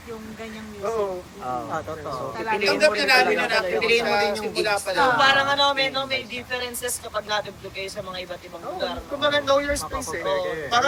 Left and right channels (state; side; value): identical; both; correlation 1.00